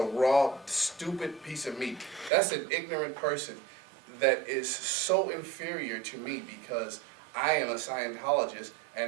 raw, stupid piece of meat. That's an ignorant person that is so inferior to me, because I am a Scientologist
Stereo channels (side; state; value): left; drops out; at 2.3 s